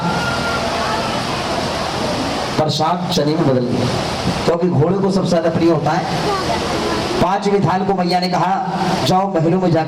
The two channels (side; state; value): both; identical; correlation 1.00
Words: चने में बदल गया, क्योंकि घोड़े को सबसे ज्यादा प्रिय होता है। पांचवी थाल को मैया ने कहा जाओ महलों में